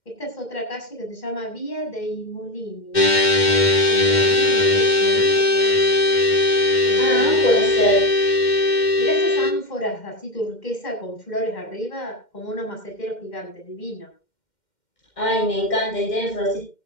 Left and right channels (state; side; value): late; right; 2.1 ms